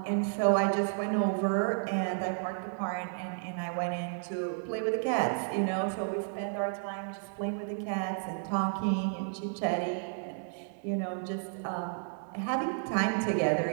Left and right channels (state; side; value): silent; left; 56 dB below the other